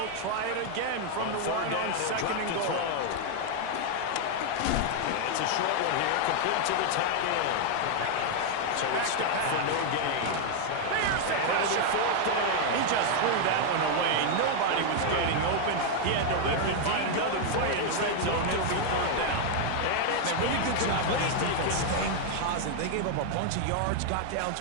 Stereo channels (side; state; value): both; different; correlation 0.00